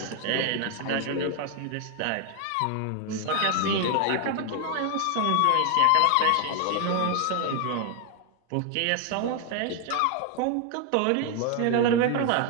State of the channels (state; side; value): different; both; correlation 0.01